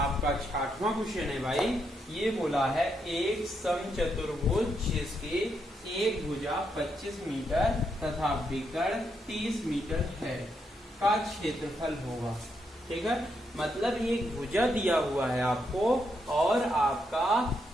6वां क्वेश्चन है भाई। ये बोला है एक समचतुर्भुज जिसकी एक भुजा 25 मीटर तथा विकर्ण 30 मीटर है का क्षेत्रफल होगा। ठीक है, मतलब एक भुजा दिया हुआ है आपको और आपका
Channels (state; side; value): normal; both; correlation 0.79